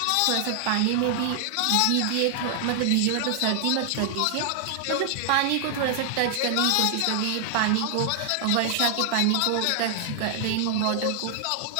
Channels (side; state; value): both; different; correlation 0.00